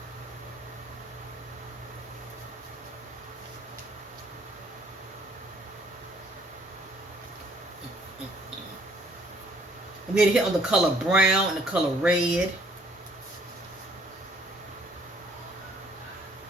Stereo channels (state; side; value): normal; both; correlation 0.61